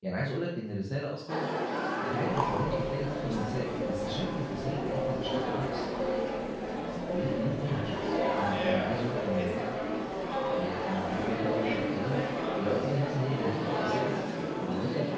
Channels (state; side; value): identical; both; correlation 1.00